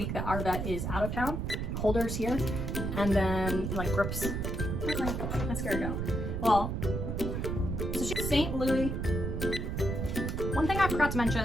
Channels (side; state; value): right; noise; rumble, 2 dB below the sound